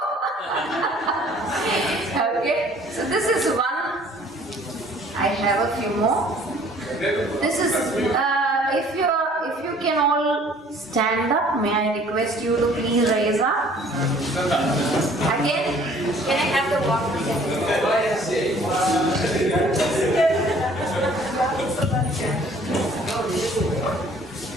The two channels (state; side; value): normal; both; correlation 0.55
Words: Okay. So this is one. I have a few more. This is if you can all stand up, may I request you to please raise up. Again, can I have the water?